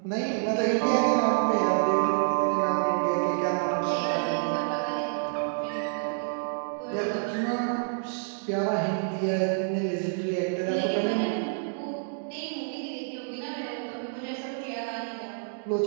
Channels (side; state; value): left; silent; digital silence